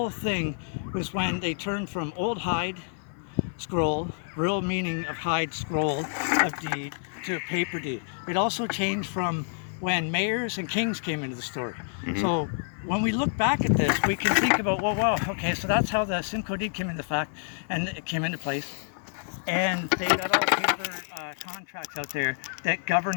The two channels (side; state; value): right; silent; 59 dB below the other